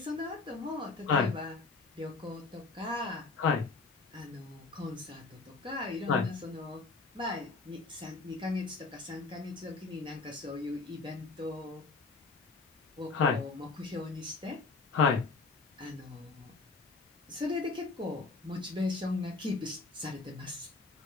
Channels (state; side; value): quieter; right; 4.0 dB